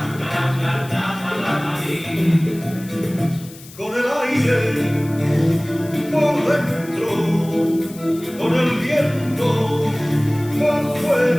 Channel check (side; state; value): left; noise; hiss, 19 dB below the sound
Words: la morí, con el aire por dentro, con el viento por